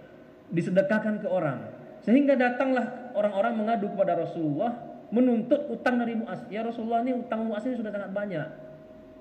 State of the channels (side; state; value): both; identical; correlation 1.00